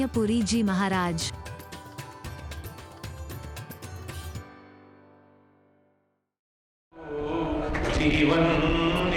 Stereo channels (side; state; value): both; identical; correlation 1.00